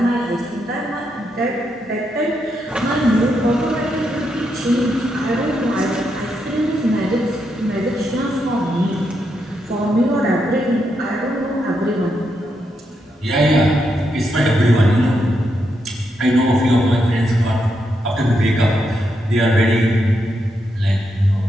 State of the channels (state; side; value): normal; both; correlation 0.82